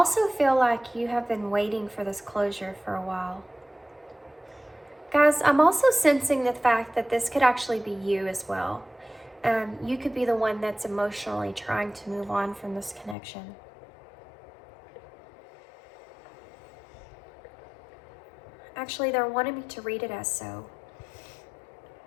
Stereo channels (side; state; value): right; drops out; at 13.2 s